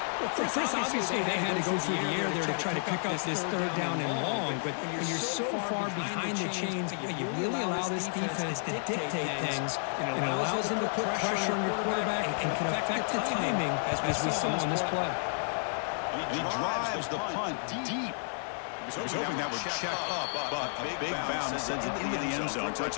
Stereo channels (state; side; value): silent; right; digital silence